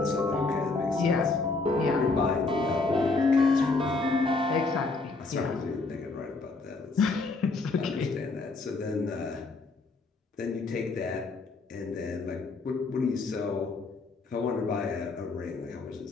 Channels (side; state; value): right; quieter; 3.7 dB